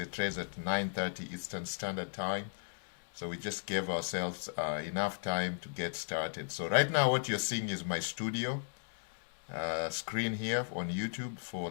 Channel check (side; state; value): right; silent; digital silence